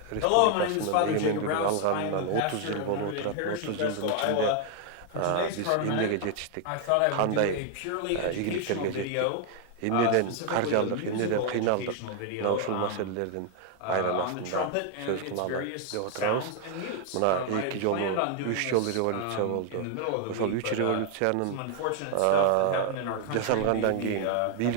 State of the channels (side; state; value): both; different; correlation 0.00